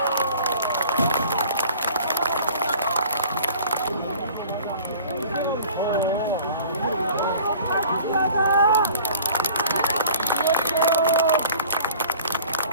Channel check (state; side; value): inverted; both; correlation -0.47